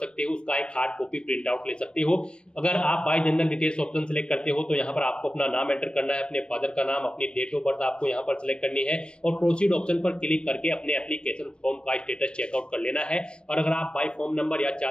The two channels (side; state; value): right; late; 0.051 ms